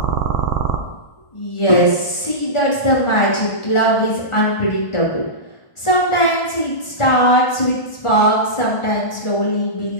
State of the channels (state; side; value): late; right; 1.4 ms